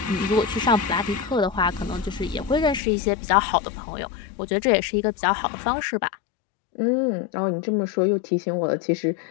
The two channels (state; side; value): drops out; right; at 2.8 s